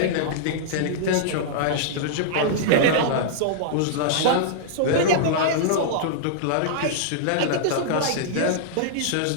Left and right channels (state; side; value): different; both; correlation -0.02